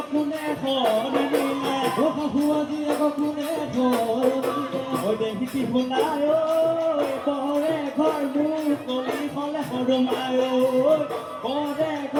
কোনে খনে নিলে ওই শাহুৱাই জীয়েক কোনে খনে নিলে ওই দেখিতি ভুলায় ওই পৰে ঘৰ মোৰ কলি হলে হৰমায় পৰে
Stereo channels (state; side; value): identical; both; correlation 1.00